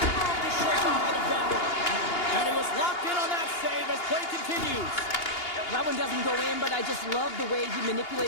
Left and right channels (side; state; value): right; late; 2.8 ms